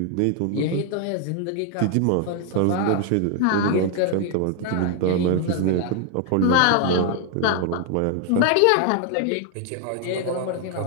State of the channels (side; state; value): both; different; correlation 0.00